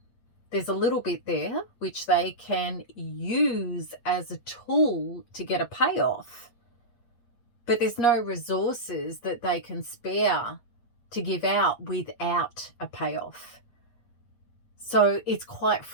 There's a little bit there which they can use as a tool to get a payoff, but there's no resources that they can spare to give out without a payoff. So it's quite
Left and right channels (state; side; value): late; right; 8.6 ms